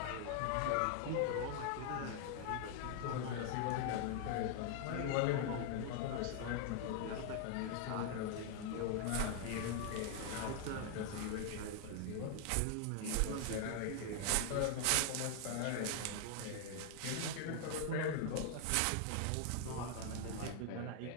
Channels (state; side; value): different; both; correlation 0.00